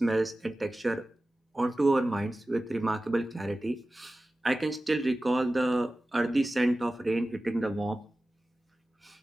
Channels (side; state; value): both; normal; correlation 0.96